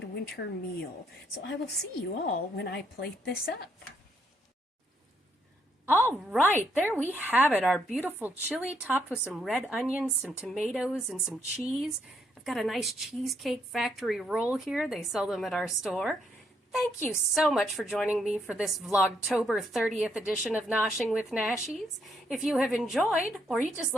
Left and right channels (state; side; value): normal; both; correlation 0.74